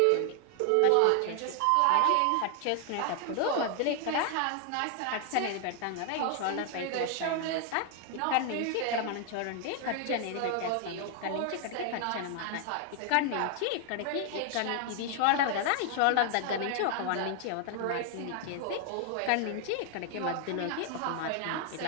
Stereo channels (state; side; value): different; both; correlation 0.00